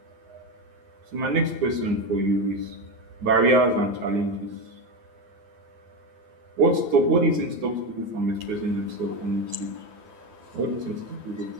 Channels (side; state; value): left; late; 9.6 ms